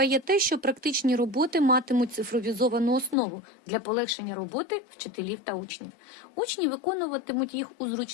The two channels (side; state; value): right; drops out; at 3.2 s